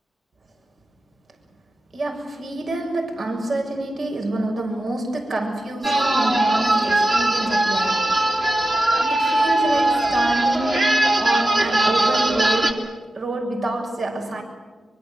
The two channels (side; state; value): both; normal; correlation 0.92